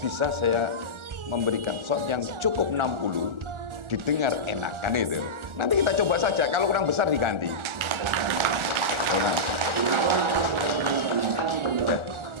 saya memberikan SON yang cukup 60, didengar enak kan itu. Nanti kita coba saja, kalau kurang besar diganti. Ya.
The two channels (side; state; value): left; late; 1.4 ms